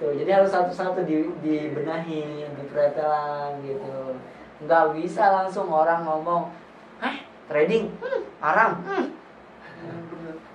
Jadi harus satu-satu dibenahi, dipretelan gitu. Nggak bisa langsung orang ngomong, trading haram.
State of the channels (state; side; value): identical; both; correlation 1.00